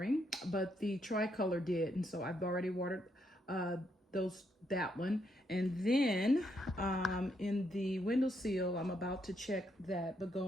but the Tricolor did. And so I've already watered that one. And then in the windowsill, I'm about to check that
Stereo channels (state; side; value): normal; both; correlation 0.77